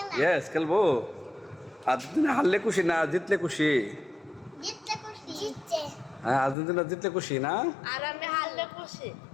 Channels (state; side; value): drops out; right; at 6.6 s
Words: ইয়েস খেলবো আর্জেন্টিনা হারলে খুশি না জিতলে খুশি জিতছে হ্যাঁ আর্জেন্টিনা জিতলে খুশি না আর আমি হারলে খুশি